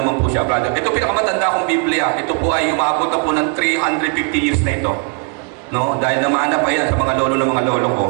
po siya, brother. Ito pinakamatanda kong Biblia. Ito po ay umabot na po ng 350 years na ito. No? Dahil namahanap pa yan sa mga lolo ng mga lolo ko.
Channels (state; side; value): quieter; left; 36.1 dB